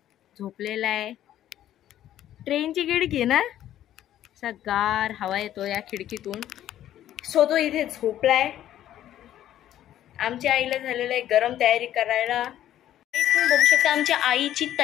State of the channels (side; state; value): right; quieter; 12.1 dB